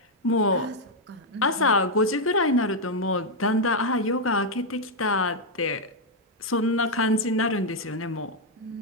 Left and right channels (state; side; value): normal; both; correlation 0.00